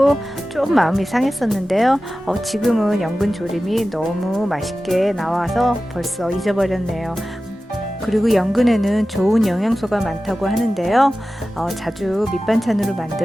좀 마음이 상했었는데요. 지금은 연근 조림이 너무 맛있게 나와서 벌써 잊어버렸네요. 그리고 연근에는 좋은 영양소가 많다고 하는데요. 자주 밑반찬으로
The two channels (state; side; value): normal; both; correlation 0.95